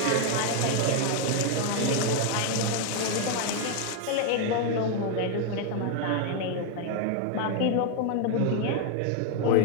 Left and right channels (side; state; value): both; different; correlation 0.01